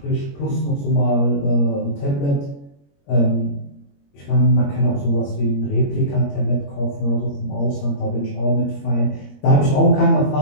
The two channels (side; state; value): right; late; 21 ms